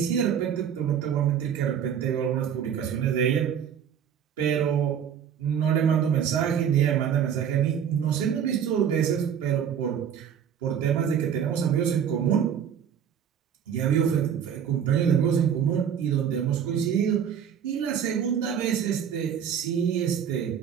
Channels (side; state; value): left; quieter; 8.4 dB